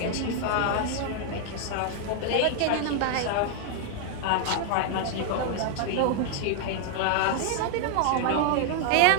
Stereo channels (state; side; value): different; both; correlation 0.00